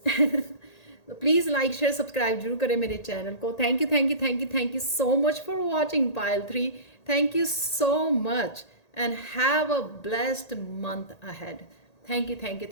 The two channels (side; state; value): right; late; 1.8 ms